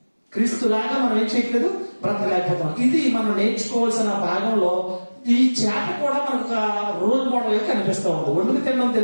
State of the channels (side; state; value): both; inverted; correlation -1.00